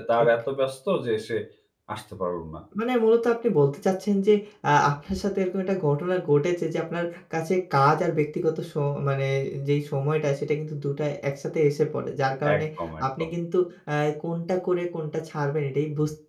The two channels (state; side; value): identical; both; correlation 1.00